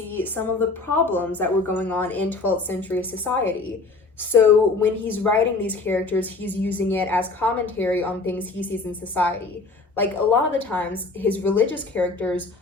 some of the problems that were going on in 12th century society. So when he's writing these characters, he's using it as commentary on things he sees in society. Like, a lot of the times, his religious characters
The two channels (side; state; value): right; quieter; 3.6 dB